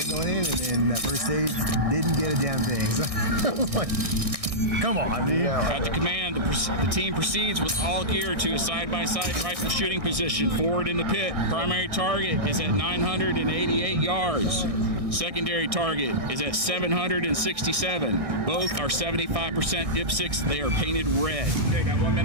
going in, and then that first stage didn't get a damn thing. So I was like, come on, dude. At the command, the team proceeds with all gear to a side-by-side rifle shooting position forward in the pit. Primary target is at 988 yards. Secondary target is at 767. Both are 75% IPSCs. They are painted red. Okay, got 1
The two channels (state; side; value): late; left; 1.6 ms